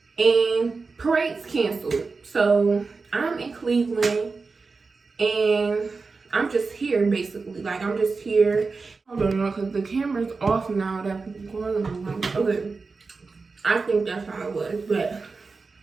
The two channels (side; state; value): left; quieter; 4.3 dB